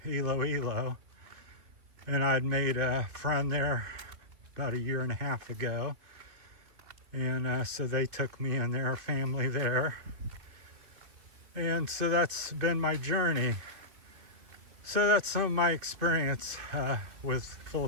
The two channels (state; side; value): late; left; 2.6 ms